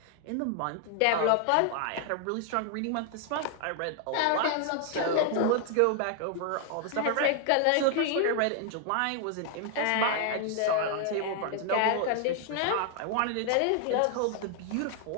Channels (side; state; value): both; different; correlation 0.00